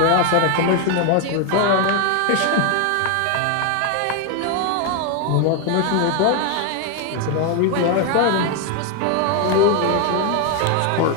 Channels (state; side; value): different; both; correlation 0.01